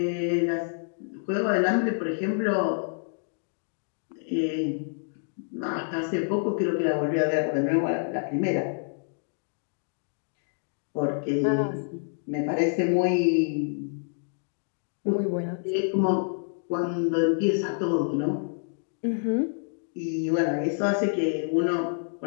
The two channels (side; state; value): right; silent; digital silence